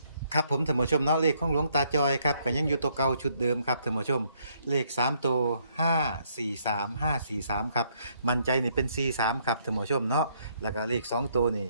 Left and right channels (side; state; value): both; inverted; correlation -0.70